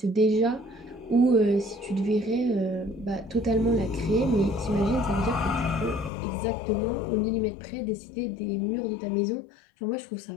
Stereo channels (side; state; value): right; drops out; at 6.1 s